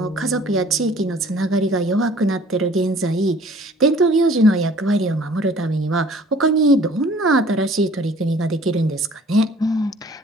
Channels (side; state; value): both; normal; correlation 0.52